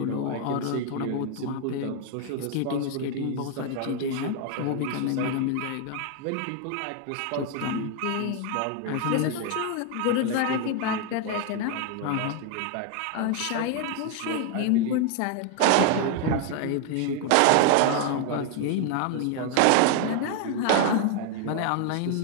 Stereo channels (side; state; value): both; different; correlation 0.00